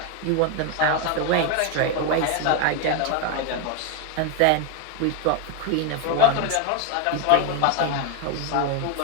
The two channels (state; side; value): different; both; correlation 0.01